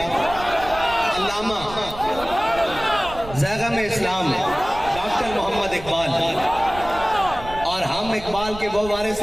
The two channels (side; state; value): right; noise; rumble, 14 dB below the sound